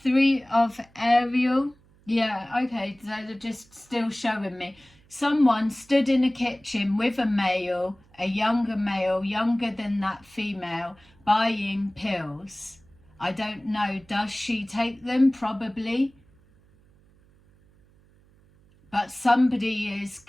Three of Ariel. Yeah, okay, so they're just still showing me. Someone stood in a kitchen with a male, a younger male, younger than that female, buying pills. I don't know, does she take them? Probably. But somebody is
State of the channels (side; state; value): right; noise; hum, 30 dB below the sound